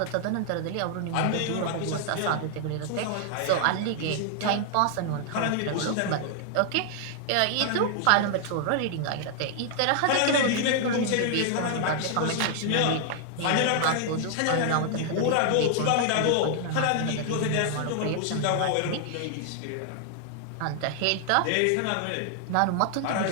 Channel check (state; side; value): different; both; correlation 0.00